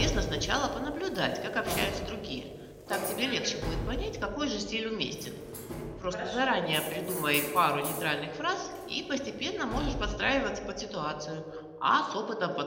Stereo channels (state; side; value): identical; both; correlation 1.00